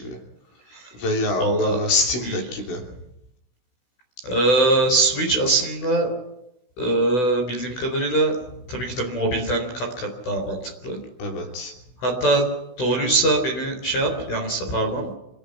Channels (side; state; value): right; late; 16 ms